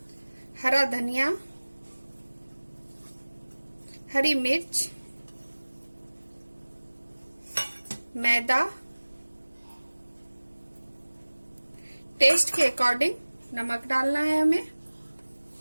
हरा धनिया, हरी मिर्च, मैदा, टेस्ट के अकॉर्डिंग नमक डालना है हमें,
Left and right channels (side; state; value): both; inverted; correlation -1.00